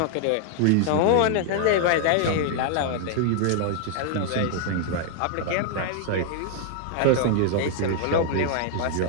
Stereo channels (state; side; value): different; both; correlation 0.00